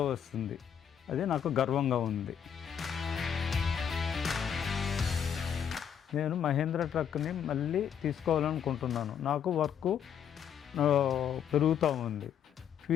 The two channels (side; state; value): right; quieter; 8.4 dB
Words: వస్తుంది. అది నాకు గర్వంగా ఉంది. నేను మహేంద్ర ట్రక్ని మళ్ళీ తీసుకోవాలనుకుంటున్నాను. నాకు వర్క్ పెరుగుతూ ఉంది.